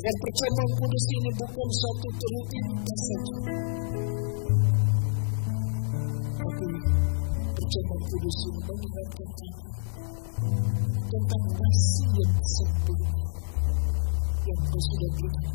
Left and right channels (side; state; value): right; silent; digital silence